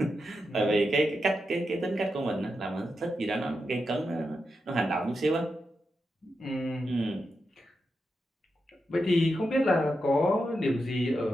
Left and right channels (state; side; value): normal; both; correlation 0.87